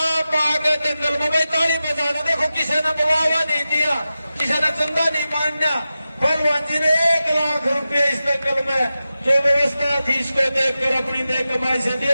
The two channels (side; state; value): both; inverted; correlation -0.93